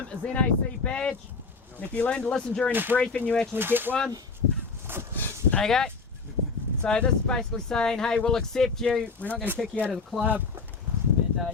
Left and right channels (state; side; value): quieter; right; 4.6 dB